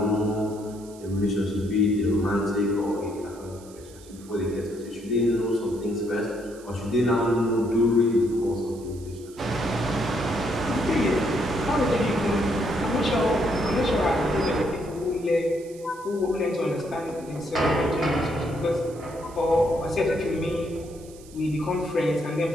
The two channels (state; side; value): noise; right; hiss, 23 dB below the sound